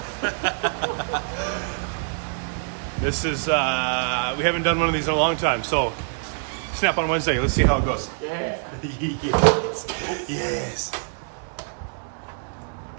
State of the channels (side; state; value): left; silent; 62 dB below the other